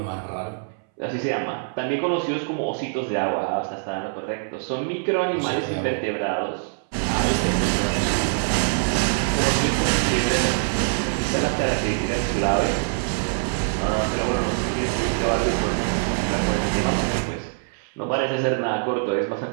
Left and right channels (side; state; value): left; silent; 63 dB below the other